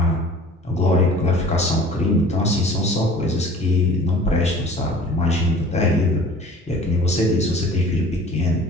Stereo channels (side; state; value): both; normal; correlation 0.46